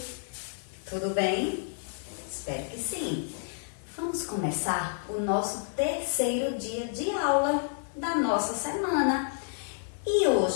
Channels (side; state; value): right; silent; digital silence